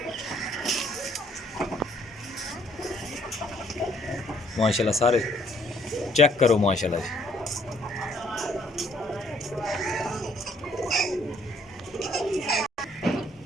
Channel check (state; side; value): normal; both; correlation 0.65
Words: माशाल्लाह सारे चेक करो माशाल्लाह जी।